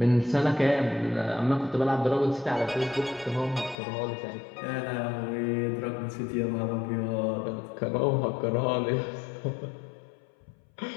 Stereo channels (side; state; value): right; drops out; at 3.8 s